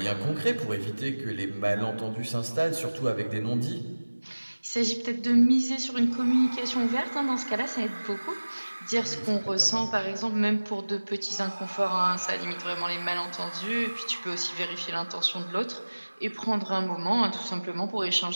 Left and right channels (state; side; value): inverted; both; correlation -1.00